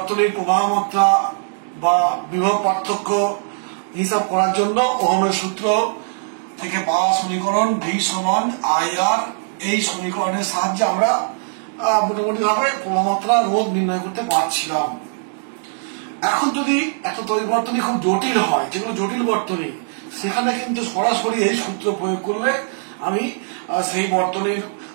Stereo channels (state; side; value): silent; left; digital silence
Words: প্রবাহ মাত্রা বা বিভব পার্থক্য হিসাব করার জন্য ওহমের সূত্র থেকে পাওয়া সমীকরণ V সমান IR এই সমীকরণের সাহায্যে আমরা মোটামুটি ভাবে প্রবাহমাত্রা রোধ নির্ণয় করতে পারছিলাম। এখন যদি একটা তড়িৎ বর্তনী খুব জটিল হয়, যেগুলো জটিল বর্তনী, সেখানে কিন্তু সরাসরি এই সূত্র প্রয়োগ করলে আমি সেই বর্তনীর